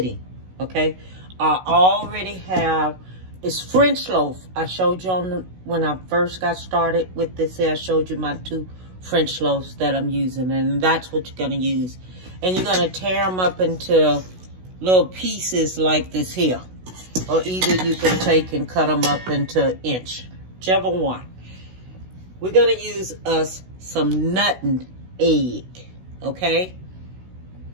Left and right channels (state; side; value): late; left; 16 ms